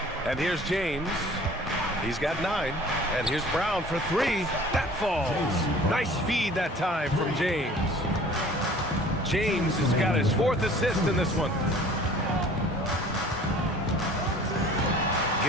And here's James. He's got 9. And here's Brown for 3. That falls. Nice feed that time from James. James has got his 4th assist in this one.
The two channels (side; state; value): both; normal; correlation 0.48